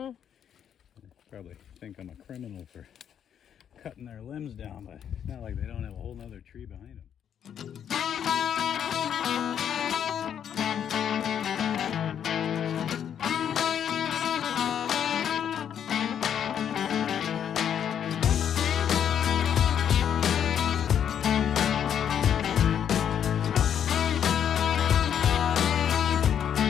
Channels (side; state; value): right; quieter; 8.9 dB